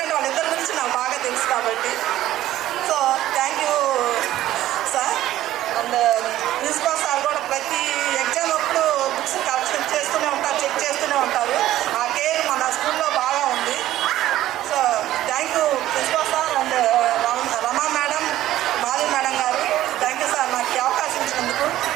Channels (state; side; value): quieter; left; 14.0 dB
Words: వాళ్ళిద్దరి గురించి నాకు బాగా తెలుసు కాబట్టి. So thank you